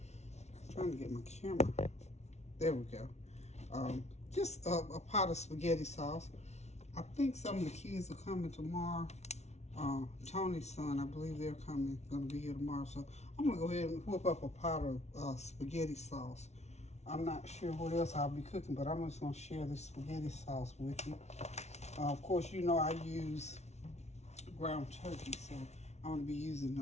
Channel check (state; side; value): late; right; 0.32 ms